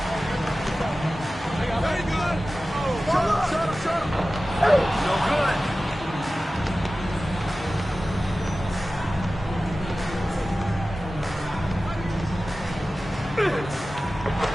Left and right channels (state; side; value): normal; both; correlation 0.96